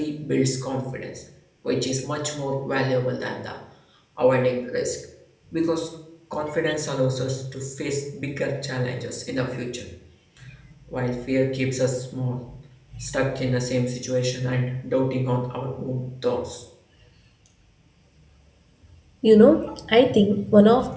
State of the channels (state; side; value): identical; both; correlation 1.00